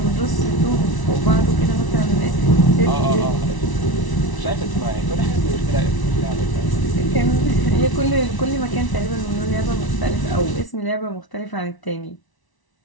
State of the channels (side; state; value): right; late; 1.0 ms